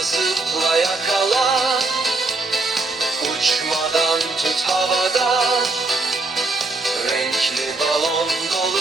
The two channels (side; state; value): left; quieter; 3.4 dB